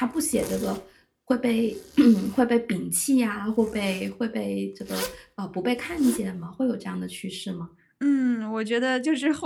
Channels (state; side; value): identical; both; correlation 1.00